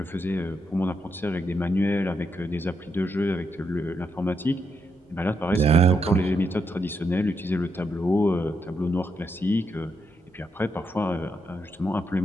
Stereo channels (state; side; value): normal; both; correlation 0.81